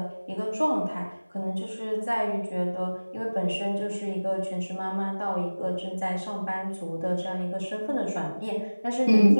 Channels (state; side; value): inverted; both; correlation -1.00